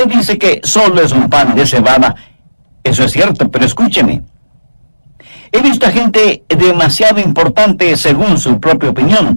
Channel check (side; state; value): both; inverted; correlation -1.00